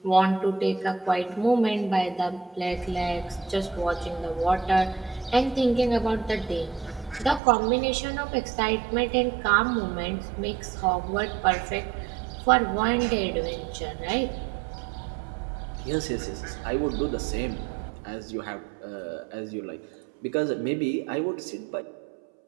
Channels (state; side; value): drops out; left; at 7.4 s